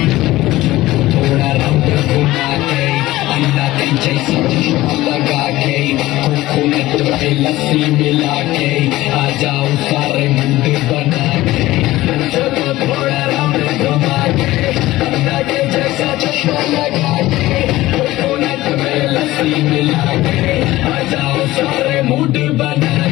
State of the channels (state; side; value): quieter; right; 17.2 dB